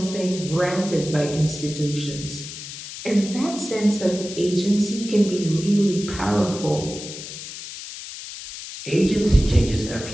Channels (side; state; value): left; noise; hiss, 11 dB below the sound